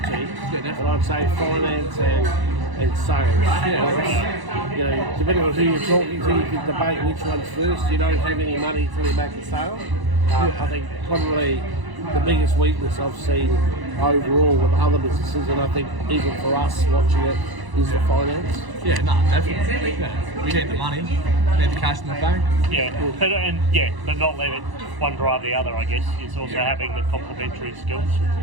But I'd say finance and sales. Depending on who you're talking to, you can debate which one's first. You don't have any money till you make a sale. I think probably the biggest weakness I've seen overall with other businesses, and I think even for us watching it, is the finance. Yeah, no, definitely. Yeah. We need the money, we need the cash in the bank. But not let it one drive the other, I guess. It's also having the complementary skills.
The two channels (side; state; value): left; late; 1.0 ms